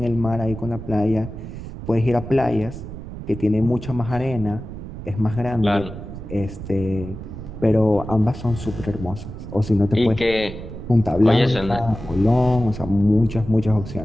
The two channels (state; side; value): noise; right; rumble, 10 dB below the sound